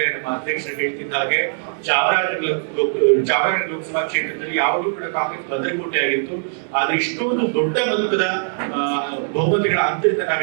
ನಮ್ಮ ಅಧ್ಯಕ್ಷರು ಹೇಳ್ತಿದ್ದ ಹಾಗೆ ಚಾಮರಾಜನಗರ ಲೋಕಸಭಾ ಕ್ಷೇತ್ರದಲ್ಲಿ ಯಾವಾಗಲೂ ಕೂಡ ಕಾಂಗ್ರೆಸ್ ಭದ್ರಕೋಟೆ ಆಗಿತ್ತು. ಆದ್ರೆ ಇಷ್ಟೊಂದು ದೊಡ್ಡ ಮೊತ್ತದ ಬಹುಮತಗಳ ಅಂತರದಿಂದ ನಾವು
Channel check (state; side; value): silent; left; digital silence